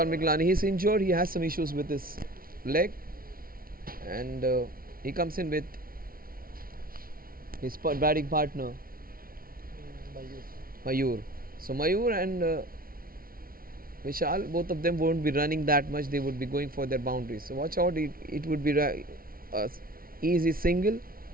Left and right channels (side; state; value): left; late; 0.43 ms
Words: Miglani, he's injured. He has some issues with his leg, and he comes in with his batting partner Mayur. So Mayur and Vishal, both of them won't be running that much. They would be going for their boundaries. So watch out. It would be a easy single,